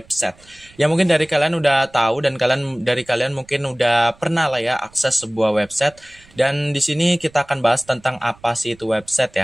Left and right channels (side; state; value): right; noise; rumble, 27 dB below the sound